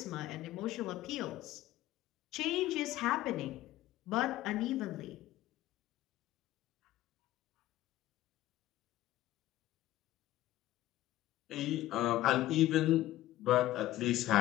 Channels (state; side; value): quieter; right; 15.2 dB